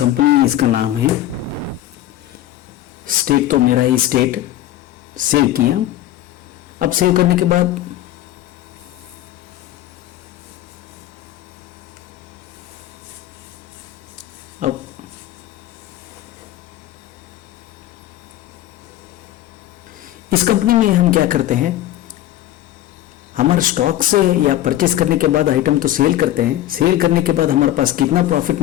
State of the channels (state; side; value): quieter; right; 13.6 dB